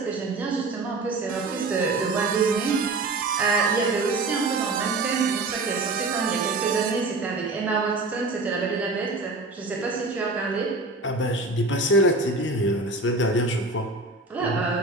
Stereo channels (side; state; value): left; quieter; 3.2 dB